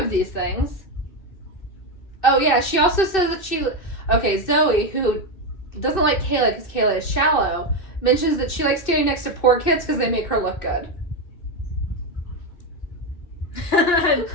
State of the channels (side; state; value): right; late; 2.6 ms